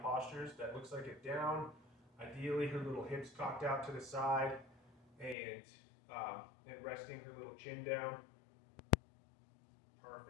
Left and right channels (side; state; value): right; drops out; at 5.4 s